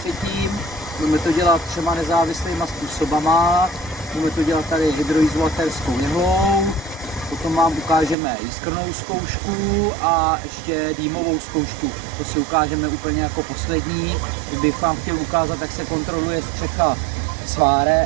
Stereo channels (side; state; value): left; drops out; at 8.2 s